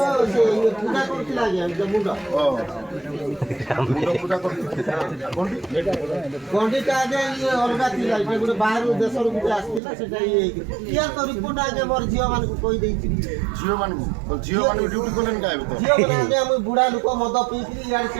ସେ ପୂଜା କରୁଥିଲା ଆଜ୍ଞା ମୁଣ୍ଡ ମୁଣ୍ଡ ପୂଜା କରୁଥିଲା ଗଣ୍ଡିଟା ଆଜ୍ଞା ଇଏ ଅଲଗା ଥିଲା ଏଇଟା ଗୋଟେ ବାହାରୁ ଦେଶରୁ ଗୋଟେ ଆସିଥିଲା ସେଟା ଇଏ ହେଇକି କିଏ ତ ରିପୋର୍ଟ ଆଜ୍ଞା ମୋର ଝିଅମାନଙ୍କୁ କହିଦେଇଛି ଝିଅମାନଙ୍କୁ ଡ୍ୟୁଟି କଲେନି କାହିଁକି ତ ଝିଅମାନେ ଆଜ୍ଞା ମୁଁ ବୁଢ଼ା ଲୋକ ମଦ ପିଇକିରି ଇଆଡ଼େ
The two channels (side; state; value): left; drops out; at 9.8 s